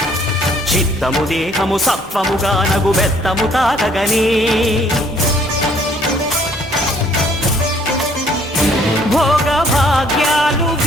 చిత్తము దేహము సత్వముగా నగు బెత్తము తాకగనే భోగ భాగ్యాలు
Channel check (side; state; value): both; normal; correlation 0.62